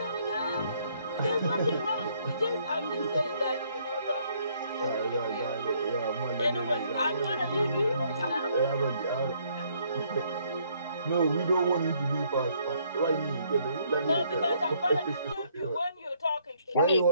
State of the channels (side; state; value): both; inverted; correlation -0.67